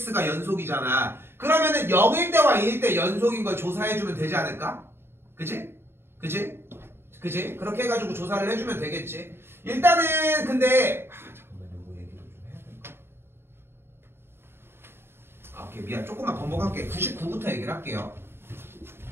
연속이잖아. 그러면은 0일 때와 2일 때 연속인 걸 조사해주면 되지 않을까? 그치? 그치? 그치? 그렇게 해가지고 조사를 해주면 되겠지. 일단은 근데 잠깐만 요거 얘기를 좀 해야 될까? 오케이 미안 조금만 번복할게. 99부터 얘기를 할게요.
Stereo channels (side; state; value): left; late; 0.11 ms